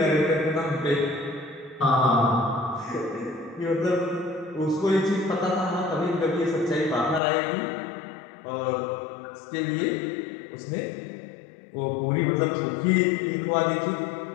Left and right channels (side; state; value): right; drops out; at 7.2 s